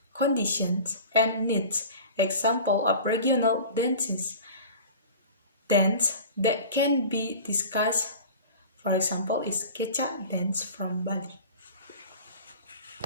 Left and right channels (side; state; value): both; inverted; correlation -0.38